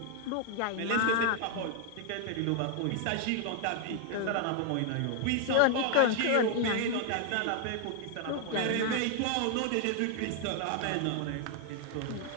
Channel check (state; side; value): different; both; correlation 0.00